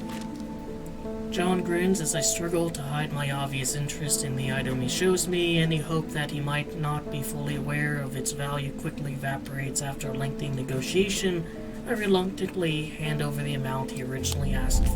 John grins as I struggle to hide my obvious interest in the item he shows me. Any hope that he might not be fully aware of its value quickly evaporates after a lengthy negotiation. I reluctantly hand over the amount he originally asked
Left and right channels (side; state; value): both; identical; correlation 1.00